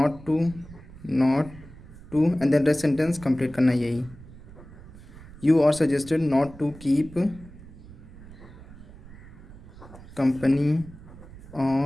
to and then rest sentence complete करना है यही। You are suggested not to keep company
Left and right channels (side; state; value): right; noise; rumble, 18 dB below the sound